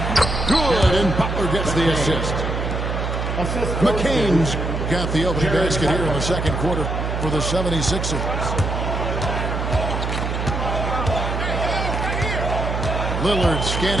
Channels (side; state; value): right; noise; hum, 2 dB below the sound